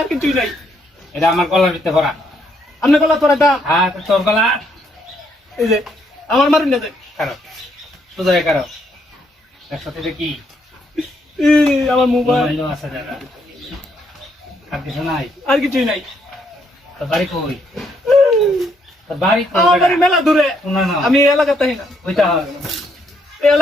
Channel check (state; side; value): normal; both; correlation 0.73